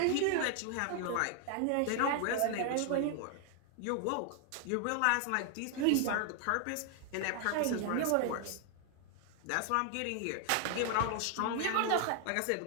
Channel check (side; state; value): both; different; correlation 0.00